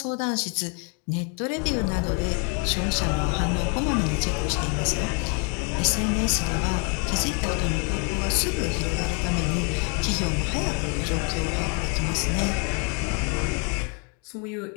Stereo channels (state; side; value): quieter; right; 36.4 dB